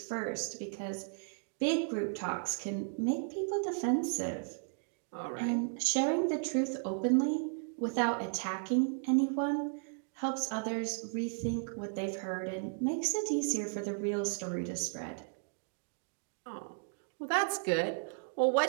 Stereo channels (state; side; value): silent; left; digital silence